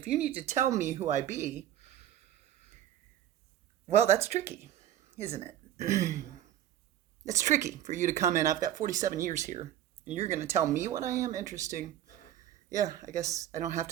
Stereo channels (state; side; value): quieter; left; 11.8 dB